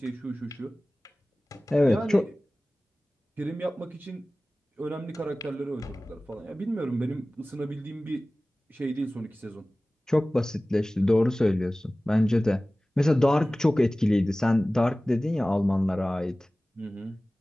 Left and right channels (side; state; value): both; normal; correlation 0.98